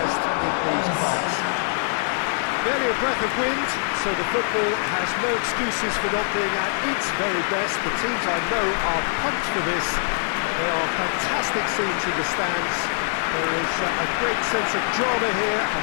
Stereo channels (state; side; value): silent; right; digital silence